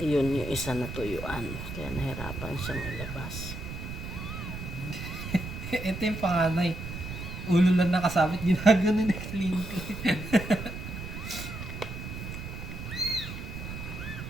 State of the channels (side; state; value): right; noise; rumble, 8 dB below the sound